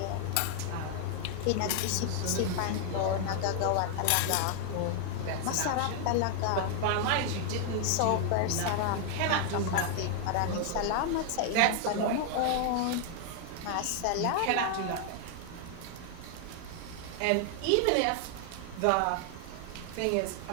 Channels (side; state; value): both; different; correlation 0.00